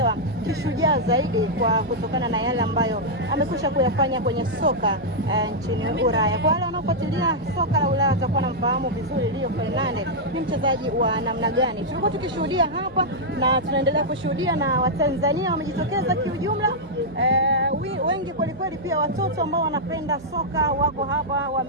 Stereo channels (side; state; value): right; noise; hum, 21 dB below the sound